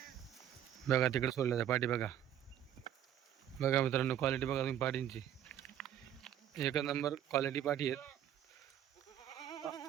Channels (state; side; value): quieter; left; 10.8 dB